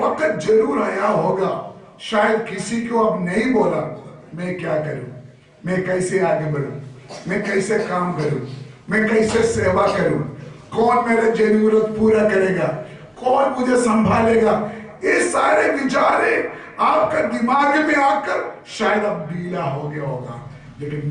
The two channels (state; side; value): identical; both; correlation 1.00